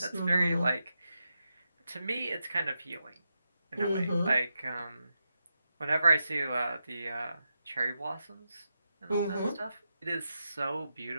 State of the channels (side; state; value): both; inverted; correlation -0.87